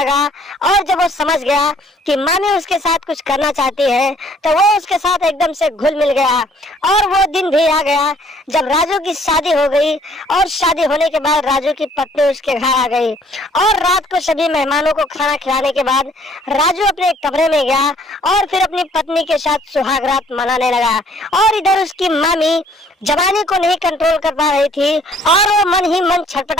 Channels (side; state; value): both; normal; correlation 0.60